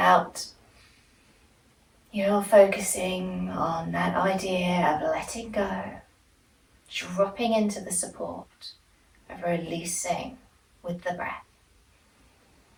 you're focusing on that idea of letting go, dropping into the support, of releasing with the breath.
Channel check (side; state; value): both; identical; correlation 1.00